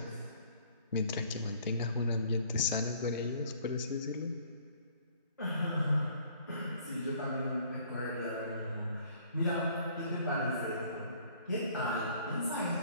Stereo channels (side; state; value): both; inverted; correlation -0.58